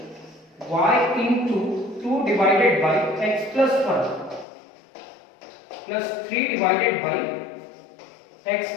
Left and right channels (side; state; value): right; drops out; at 4.5 s